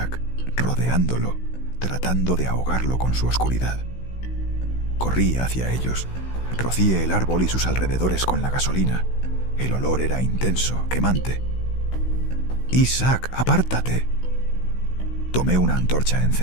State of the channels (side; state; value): right; late; 16 ms